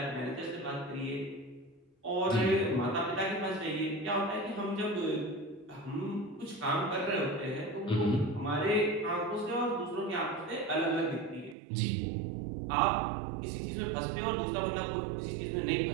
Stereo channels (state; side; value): drops out; left; at 11.6 s